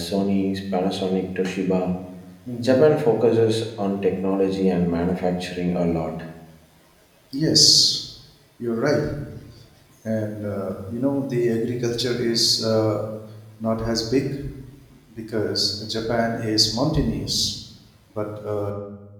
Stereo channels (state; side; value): identical; both; correlation 1.00